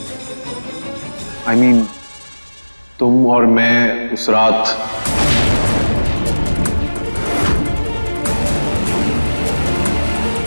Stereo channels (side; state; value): both; inverted; correlation -1.00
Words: I mean, तुम और मैं उस रात